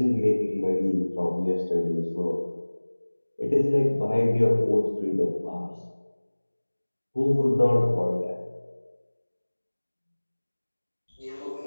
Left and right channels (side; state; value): both; inverted; correlation -1.00